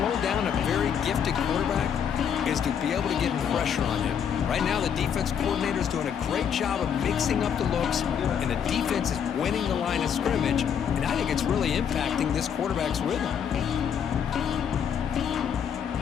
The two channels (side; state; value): right; quieter; 8.0 dB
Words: down a very gifted quarterback is to be able to get pressure on him. Right now, the defense coordinator is doing a great job of mixing up the looks, and the defense is winning the line of scrimmage, and I think it's really impacting this quarterback's rhythm.